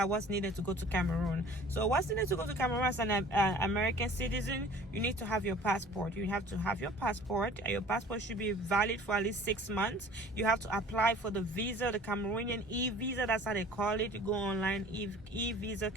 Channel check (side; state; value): both; normal; correlation 0.47